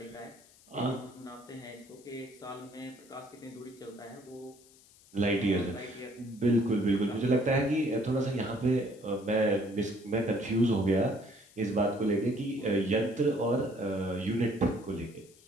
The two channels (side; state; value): left; noise; hiss, 26 dB below the sound